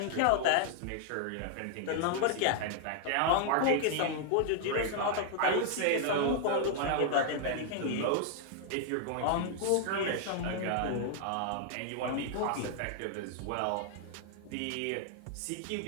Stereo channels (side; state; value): both; different; correlation 0.00